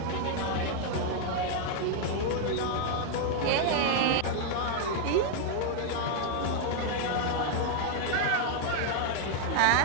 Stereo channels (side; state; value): both; different; correlation 0.00